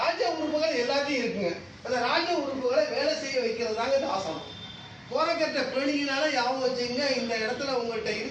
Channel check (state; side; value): identical; both; correlation 1.00